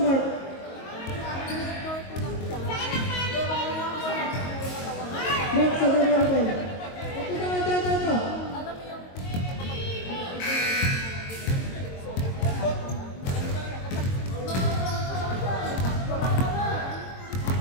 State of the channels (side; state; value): right; late; 22 ms